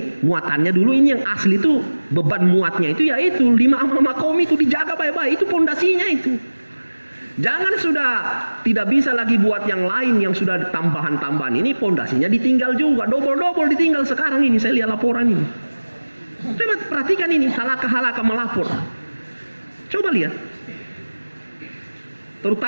muatannya dulu, ini yang asli itu beban muatnya itu yaitu 5 amal makom itu dijaga baik-baik, itu pondasinya itu. Jangan sudah tidak bisa lagi buat yang lain yang sudah tambahan-tambahan. Ini pondasinya ditinggal juga, double-double ditinggal sekarang ini. Saya lihat laporan ini. Coba perhatikan ini, halaqah melapor. Coba lihat.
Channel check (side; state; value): both; inverted; correlation -1.00